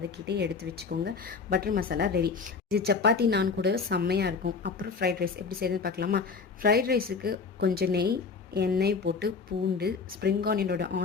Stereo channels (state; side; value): quieter; right; 5.0 dB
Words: எடுத்து வச்சுக்கோங்க. Butter masala ready. இது சப்பாத்தி நான் கூட செம்மையாக இருக்கும். அப்புறம் ஃப்ரைட் ரைஸ் எப்படி செய்யுதுன்னு பார்க்கலாமா? ஃப்ரைட் ரைஸுக்கு கொஞ்சம் நெய், எண்ணெய் போட்டு பூண்டு, ஸ்ப்ரிங்